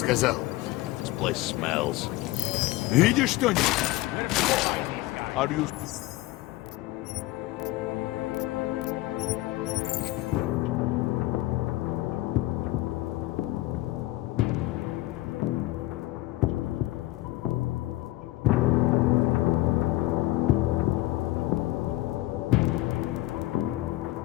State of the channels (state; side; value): quieter; right; 17.9 dB